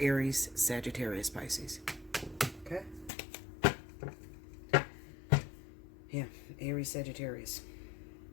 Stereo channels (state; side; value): drops out; right; at 3.1 s